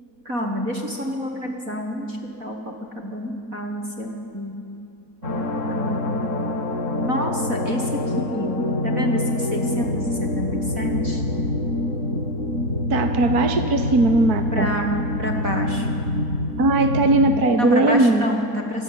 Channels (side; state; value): left; late; 4.1 ms